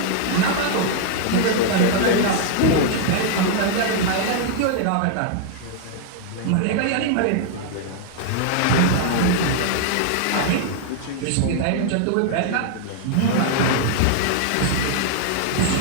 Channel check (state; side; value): different; both; correlation 0.00